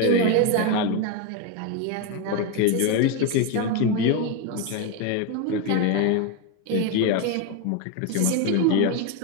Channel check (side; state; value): both; different; correlation 0.02